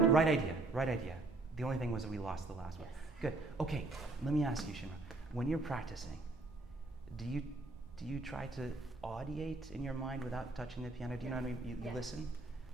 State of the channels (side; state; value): left; quieter; 3.1 dB